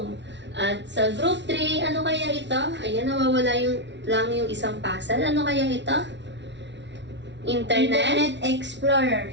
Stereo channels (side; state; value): left; late; 0.51 ms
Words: At sa group 3, ano kaya ito? Ayan, nawawala lang yung isang puzzle. Ano kaya ito? Internet? Internet Explorer.